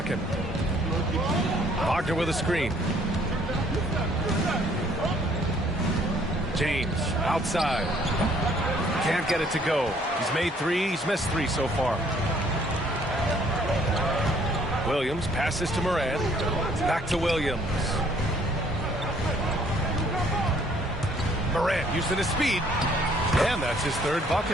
Wagner with a screen. James outside. Can't get it to go. He's made 3. He's missed 3 so far. Williams passes to Morant. Back to Williams. Morant using his speed. And that's his 3rd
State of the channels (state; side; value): normal; both; correlation 0.62